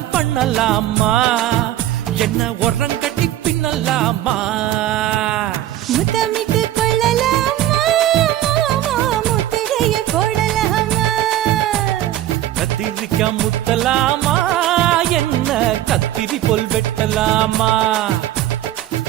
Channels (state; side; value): quieter; left; 13.3 dB